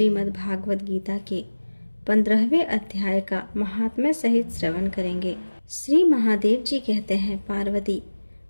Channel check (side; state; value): both; inverted; correlation -1.00